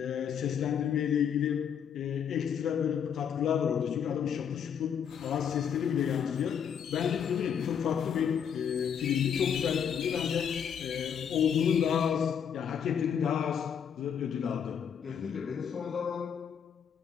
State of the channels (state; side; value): quieter; right; 7.9 dB